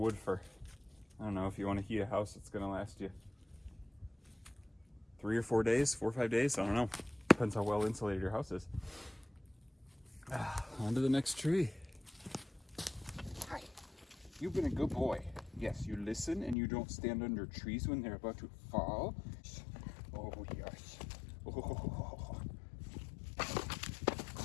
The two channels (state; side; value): drops out; right; at 16.6 s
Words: for, I don't know, if you want to heat a house, it's going to last you 3 or 4 days, 4 or 5 days. I don't know. Depends how well insulated your house is. On to the next tree. Hi. You've been a good boy. Yes, you listen and you don't stand under trees when they're about to fall. Oh, yes. Oh.